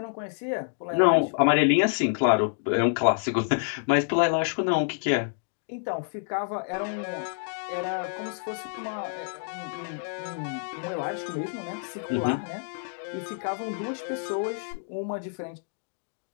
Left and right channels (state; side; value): silent; right; digital silence